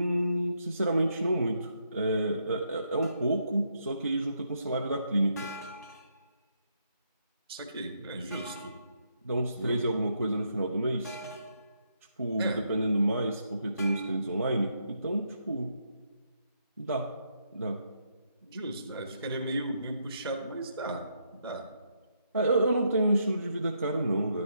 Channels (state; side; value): inverted; both; correlation -0.77